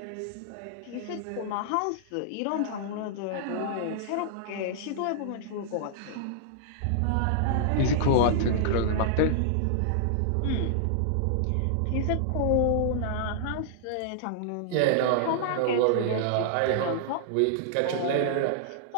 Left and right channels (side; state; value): both; different; correlation -0.01